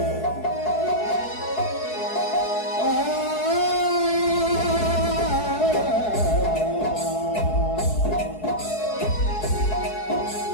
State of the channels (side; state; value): right; late; 4.7 ms